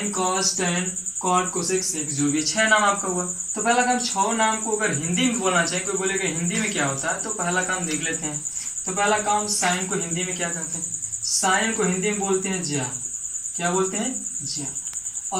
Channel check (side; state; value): right; noise; rumble, 28 dB below the sound